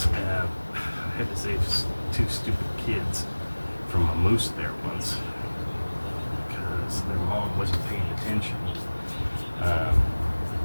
I had to save two stupid kids from a moose there once because their mom wasn't paying attention.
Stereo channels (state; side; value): inverted; both; correlation -1.00